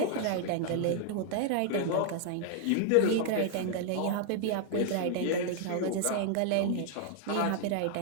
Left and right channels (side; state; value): both; different; correlation 0.00